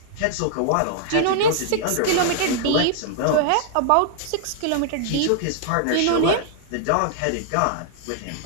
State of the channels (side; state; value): both; different; correlation -0.01